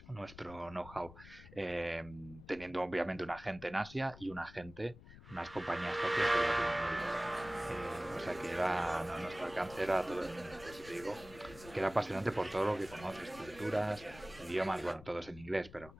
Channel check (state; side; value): noise; left; rumble, 18 dB below the sound